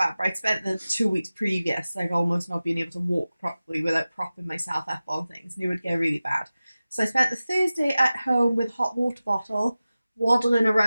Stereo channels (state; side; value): inverted; both; correlation -0.96